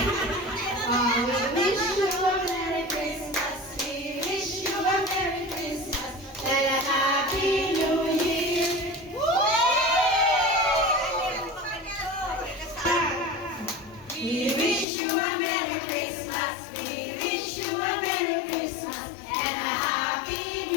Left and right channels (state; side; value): drops out; right; at 14.9 s